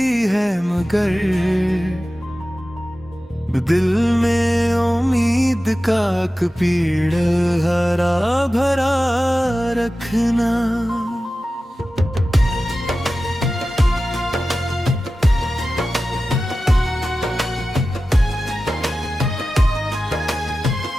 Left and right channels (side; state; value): both; normal; correlation 0.95